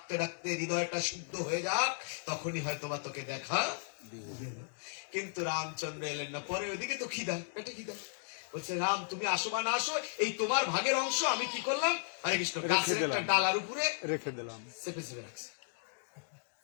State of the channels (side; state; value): right; silent; digital silence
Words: ডাকতে হৃদয়টা শুদ্ধ হয়ে যাক, তখনই হয়তো বা তোকে দেখা। কিন্তু রামচন্দ্র এলেন না। পরে ওইদিকে তো খিদা, পেটে খিদা। বলছে, রাম তুমি আসো বা না আসো, এই তোমার ভাগের অংশ আমি কি করলাম? হরে কৃষ্ণ, গাছের একটা ডালার উপরে রেখে দিলাম, চেপে চেপে রাখছে।